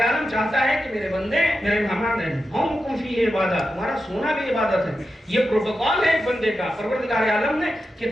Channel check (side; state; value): both; normal; correlation 0.90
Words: عالم چاہتا ہے کہ میرے بندے میرے مہمان ہیں، ہم فیہ عبادت، تمہارا سونا بھی عبادت ہے۔ یہ پروٹوکول ہے ایک بندے کا۔ پروردگار عالم نے